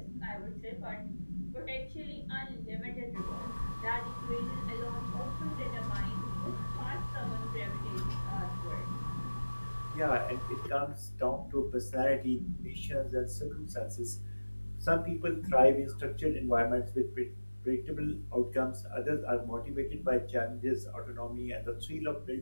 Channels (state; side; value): inverted; both; correlation -1.00